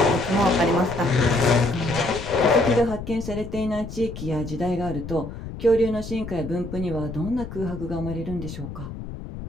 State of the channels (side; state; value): left; noise; rumble, 10 dB below the sound